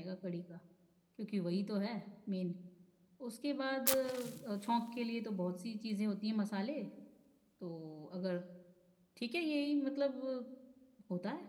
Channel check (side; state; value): both; identical; correlation 1.00